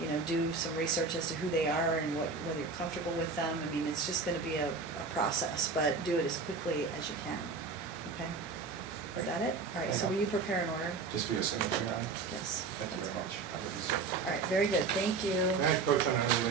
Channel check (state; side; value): quieter; left; 4.5 dB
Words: know, do some research as to who they are and whether you're comfortable with them. I mean, it's just gonna be a process, but do it as quickly as you can, okay? Is that it? All right, so will you prepare an order? Just for your signature on it? Yes. Thank you that's very fine. much. I will do so. All right, very good, thank you. May I approach on an